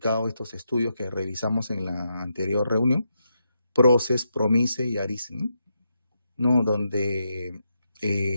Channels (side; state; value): both; inverted; correlation -0.83